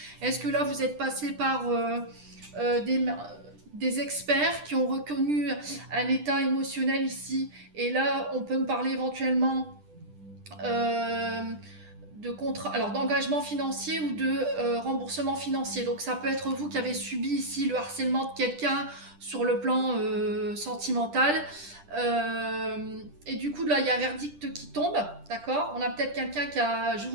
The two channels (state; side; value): late; left; 10 ms